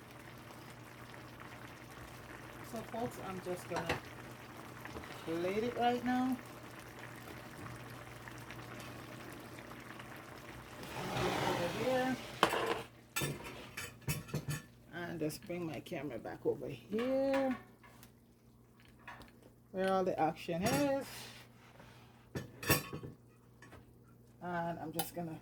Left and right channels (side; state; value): both; identical; correlation 1.00